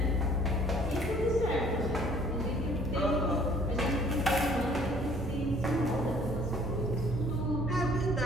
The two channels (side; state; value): both; normal; correlation 0.57